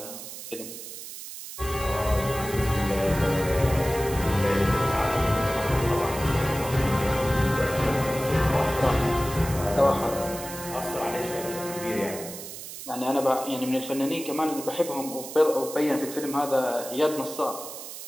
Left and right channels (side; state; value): right; noise; hiss, 11 dB below the sound